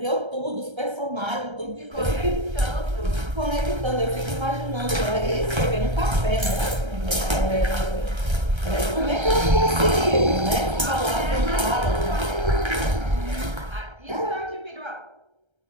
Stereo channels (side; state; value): left; late; 1.3 ms